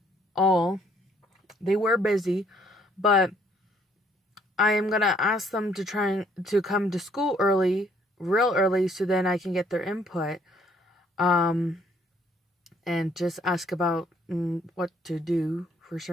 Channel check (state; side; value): normal; both; correlation 0.65